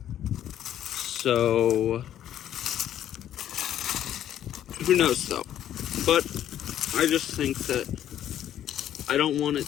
So who knows though? But I just think that I don't want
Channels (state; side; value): quieter; right; 11.1 dB